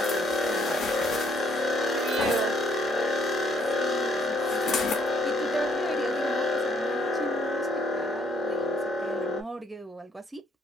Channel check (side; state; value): both; normal; correlation 0.68